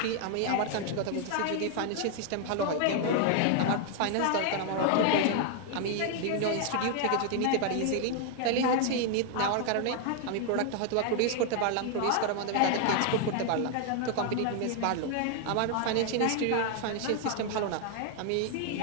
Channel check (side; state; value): both; different; correlation 0.00